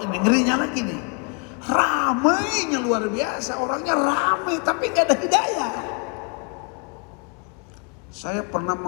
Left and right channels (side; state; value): right; quieter; 37.2 dB